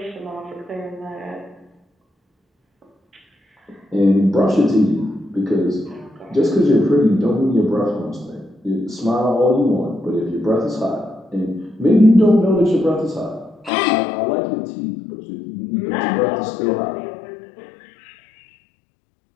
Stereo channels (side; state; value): right; drops out; at 13.7 s